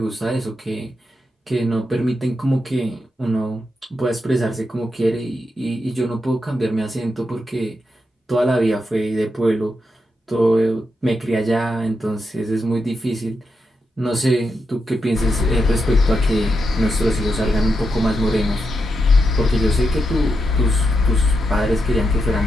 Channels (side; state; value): both; normal; correlation 0.85